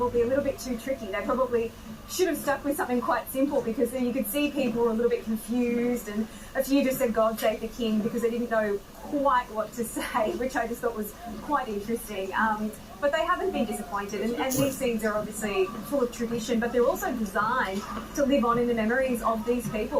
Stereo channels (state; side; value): identical; both; correlation 1.00